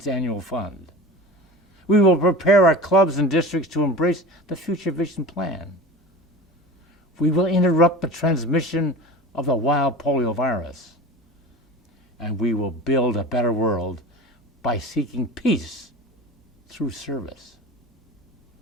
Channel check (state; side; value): normal; both; correlation 0.35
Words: annual fund. We will prepare our clubs and districts to embrace the Future Vision Plan. We will interrupt the transmission of the wild polio virus. And we will build a better world by seeking peace through service.